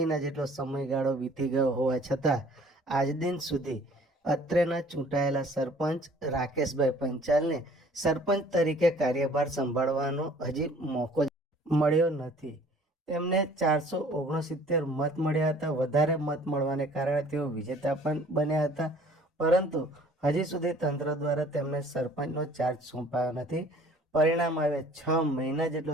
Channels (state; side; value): normal; both; correlation 0.53